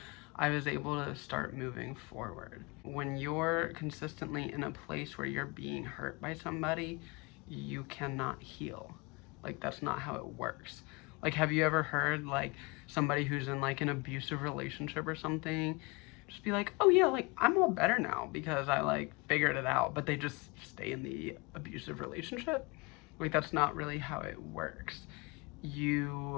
I was able to start moving forward. When you're consistently in a place where you're being hurt by somebody, you cannot heal. Like, that's not how it works. Like, have you ever heard like somebody who's in like an abusive relationship or something just be like, oh yeah, like I'm all better now because I like figured it out, but they just stay in the abusive relationship? Like, that's not really how it works.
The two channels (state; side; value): quieter; right; 27.4 dB